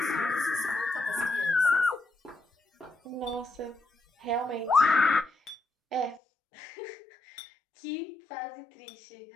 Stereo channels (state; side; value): drops out; right; at 6.2 s